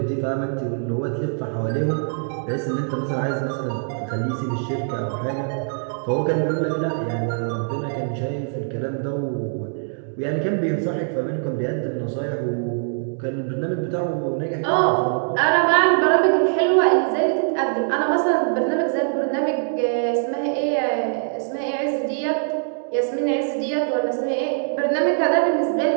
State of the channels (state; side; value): silent; left; digital silence